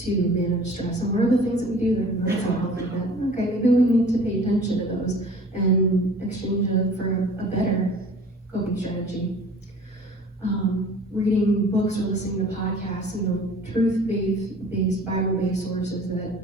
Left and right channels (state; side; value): normal; both; correlation 0.47